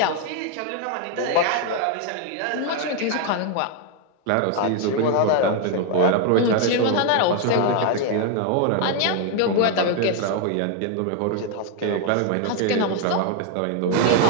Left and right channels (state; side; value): different; both; correlation 0.01